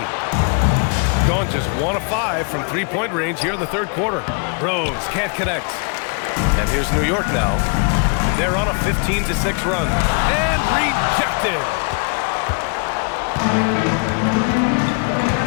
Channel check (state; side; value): quieter; right; 39.1 dB